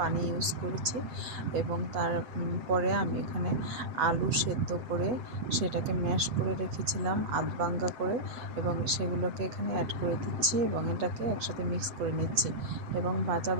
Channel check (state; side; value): late; left; 7.9 ms